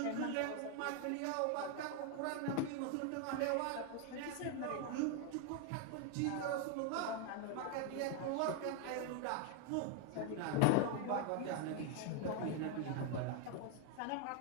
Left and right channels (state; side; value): different; both; correlation 0.00